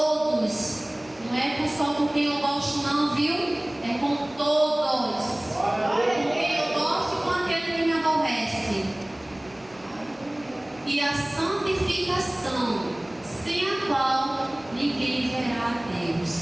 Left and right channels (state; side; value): noise; right; rumble, 28 dB below the sound